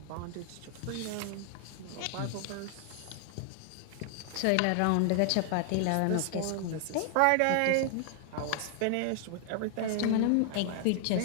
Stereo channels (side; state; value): both; different; correlation 0.00